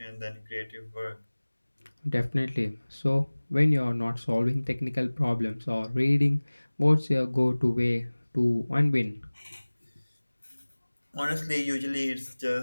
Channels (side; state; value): both; inverted; correlation -1.00